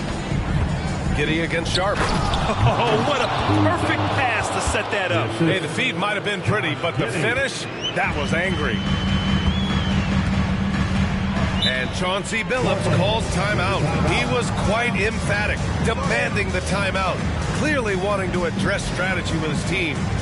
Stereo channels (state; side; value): identical; both; correlation 1.00